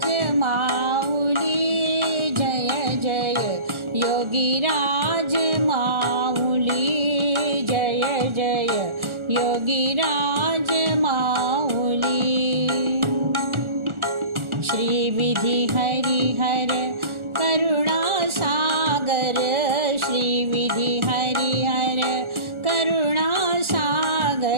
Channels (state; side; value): late; left; 1.4 ms